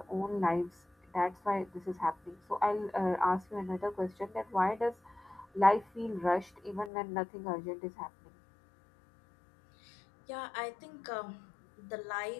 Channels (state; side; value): drops out; right; at 6.9 s